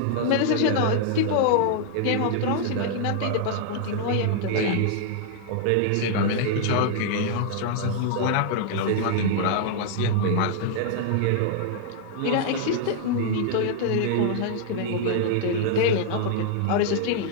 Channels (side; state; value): both; different; correlation -0.01